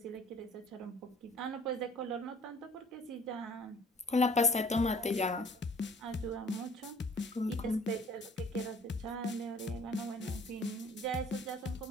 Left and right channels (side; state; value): both; normal; correlation 0.52